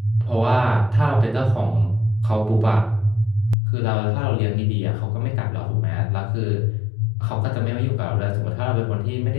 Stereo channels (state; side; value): drops out; right; at 3.6 s